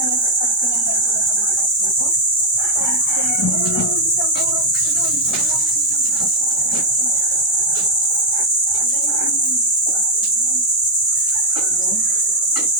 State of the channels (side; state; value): both; normal; correlation 0.01